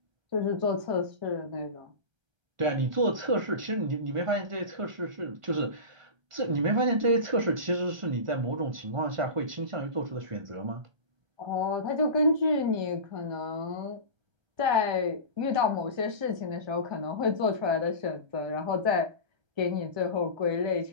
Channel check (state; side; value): late; left; 1.3 ms